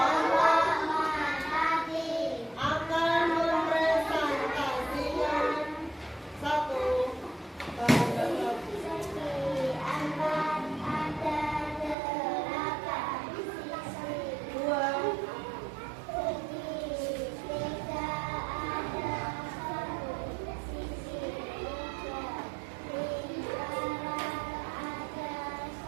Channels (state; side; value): drops out; left; at 12.0 s